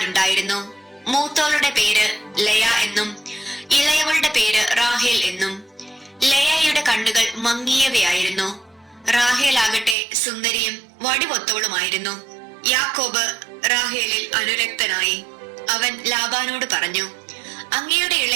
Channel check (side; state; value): left; drops out; at 10.0 s